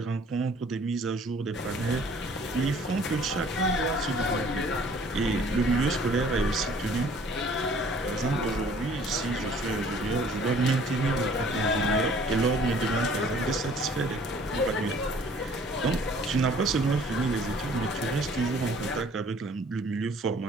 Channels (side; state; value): both; normal; correlation 0.55